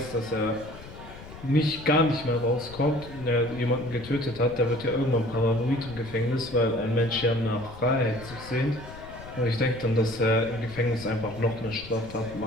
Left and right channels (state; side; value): noise; left; rumble, 15 dB below the sound